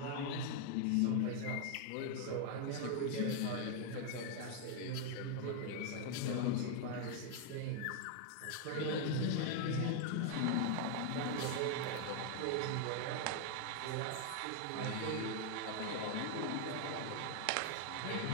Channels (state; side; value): different; both; correlation 0.00